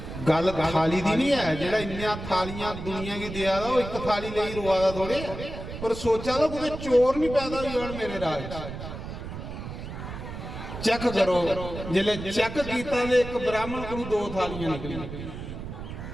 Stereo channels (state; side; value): noise; right; rumble, 9 dB below the sound